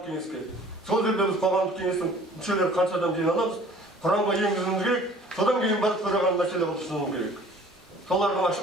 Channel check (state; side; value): normal; both; correlation 0.50